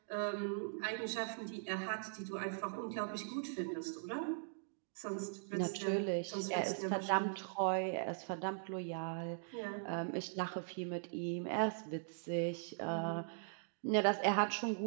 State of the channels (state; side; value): silent; left; digital silence